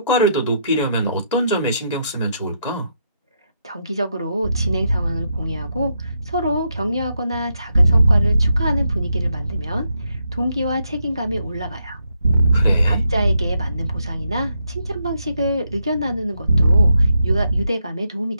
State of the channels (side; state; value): both; inverted; correlation -0.79